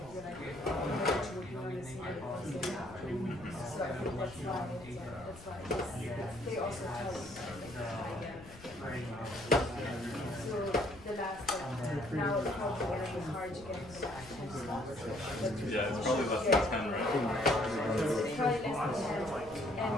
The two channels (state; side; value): noise; left; rumble, 18 dB below the sound